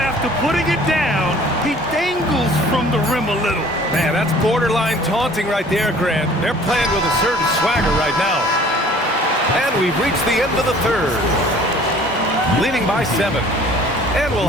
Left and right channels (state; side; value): normal; both; correlation 0.51